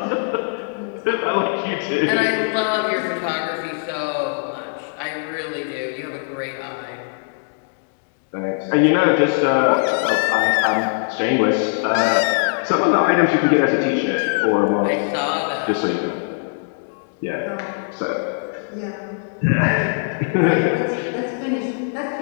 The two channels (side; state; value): right; silent; digital silence